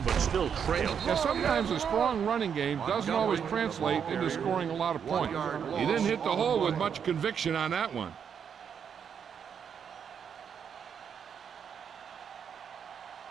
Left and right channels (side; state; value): left; quieter; 7.5 dB